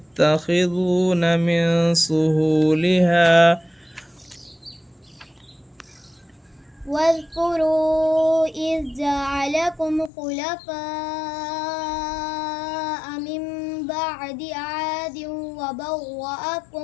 من سهولها واذكروا إذ جعلكم خلفاء من بعد عاد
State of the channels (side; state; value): right; drops out; at 10.1 s